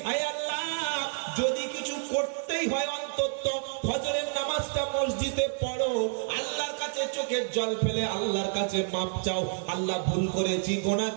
আয় আল্লাহ যদি কিছু করতেই হয় অন্তত ফজরের নামাজটা মসজিদে পড়ো, আল্লাহর কাছে চোখের জল ফেলে আল্লাহর কাছে মাপ চাও, আল্লাহ ভুল করেছি, গুনাহ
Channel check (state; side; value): silent; left; 56 dB below the other